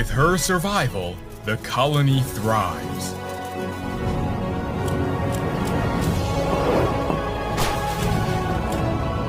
her survival, the colony thrives.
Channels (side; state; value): both; identical; correlation 1.00